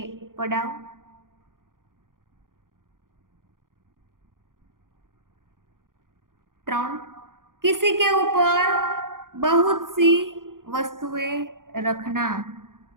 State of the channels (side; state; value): left; late; 0.90 ms